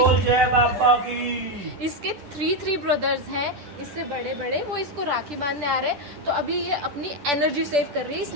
जय बाबा की। इसके थ्री ब्रदर्स हैं, इससे बड़े बड़े, वो इसको राखी बांधने आ रहे हैं। तो अभी ये अपनी एनर्जी सेव कर रही है,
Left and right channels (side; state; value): left; late; 10 ms